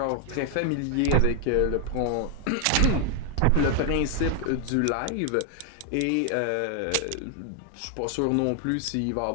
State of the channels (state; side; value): different; both; correlation 0.00